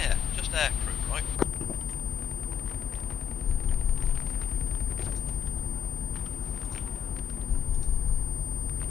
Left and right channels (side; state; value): right; quieter; 8.4 dB